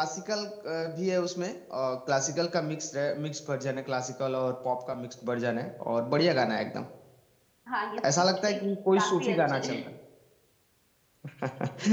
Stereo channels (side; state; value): both; identical; correlation 1.00